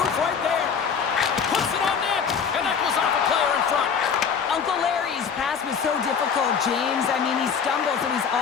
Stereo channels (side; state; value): right; quieter; 6.7 dB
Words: right there. Puts it on net, and that goes off a player in front. Uncle Larry's pass was so difficult, James. I mean, he stumbles and he's